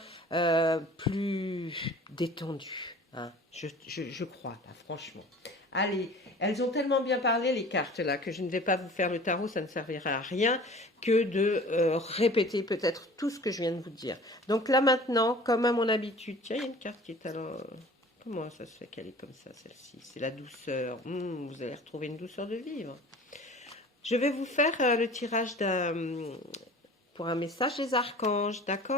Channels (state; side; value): normal; both; correlation 0.44